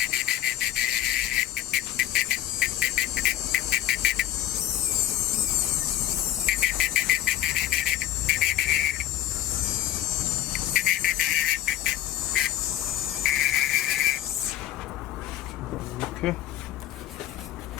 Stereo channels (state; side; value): quieter; right; 13.1 dB